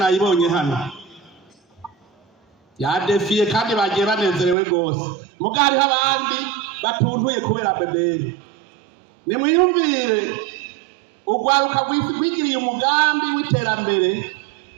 hano yadefiye kandi bagiye banezerewe gose. Mugari abandi batuntuye kubera BBN. Nimwiyumvire ugwaruka gwigiriye umugambi w'iterambere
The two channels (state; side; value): drops out; left; at 4.5 s